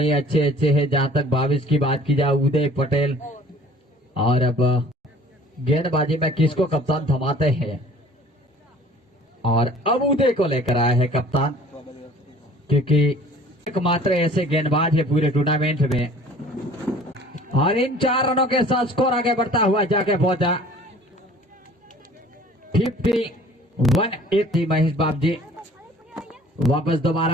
अच्छे अच्छे हैं। जहां तक भाविश की बात की जाए, उदय पटेल। और अब गेंदबाजी में किसको कप्तान थमाते हैं, और अब उदय को लेकर आया है कप्तान, क्योंकि एकमात्र ऐसे गेंदबाज है पूरे टूर्नामेंट में। और इन 4 रनों के साथ स्कोर आगे बढ़ता हुआ जाके पहुंचा 51-80। महेश बाब जी वापस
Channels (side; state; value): both; normal; correlation 0.50